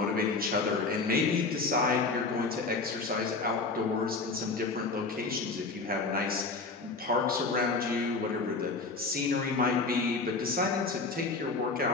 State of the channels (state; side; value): quieter; right; 3.9 dB